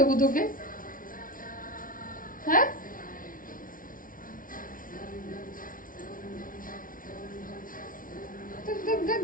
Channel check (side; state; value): right; late; 0.39 ms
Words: তোকে? হ্যাঁ দেখ দেখ